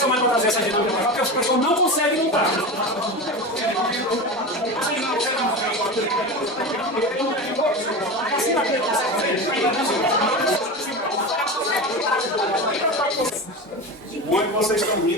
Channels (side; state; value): both; normal; correlation 0.25